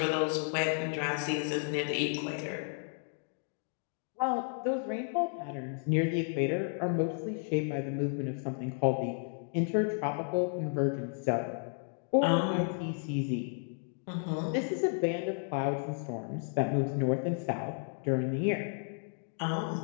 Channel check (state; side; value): silent; right; 56 dB below the other